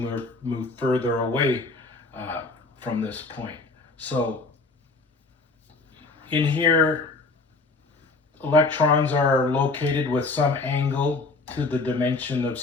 move further away from this point. So In here, electrons are located with some angle to the dimension of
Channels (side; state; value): right; quieter; 3.6 dB